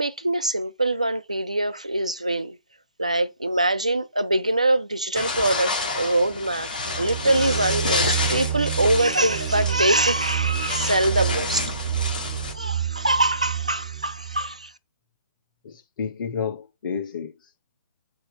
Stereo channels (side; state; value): both; inverted; correlation -0.64